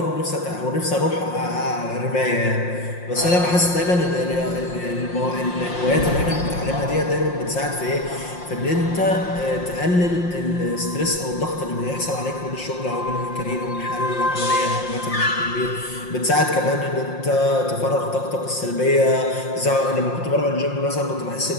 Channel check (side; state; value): right; late; 5.6 ms